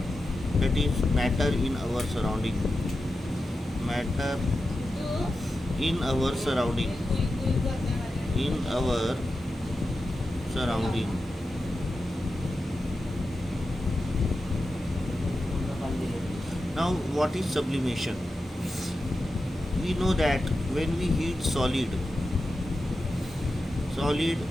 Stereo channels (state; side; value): normal; both; correlation 0.91